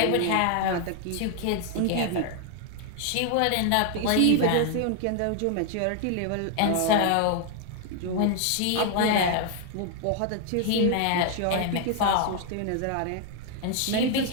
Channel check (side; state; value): both; different; correlation 0.00